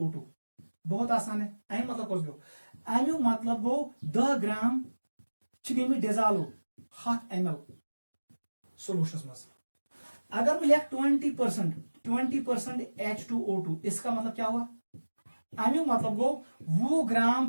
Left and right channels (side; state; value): both; inverted; correlation -1.00